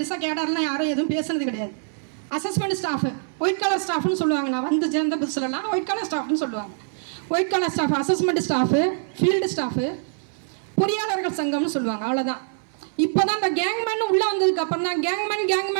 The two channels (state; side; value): silent; left; 61 dB below the other